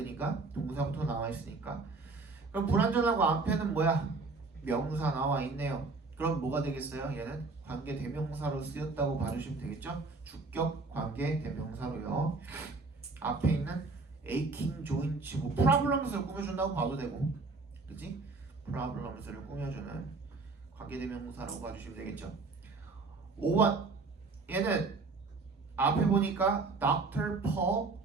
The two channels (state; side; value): quieter; left; 3.9 dB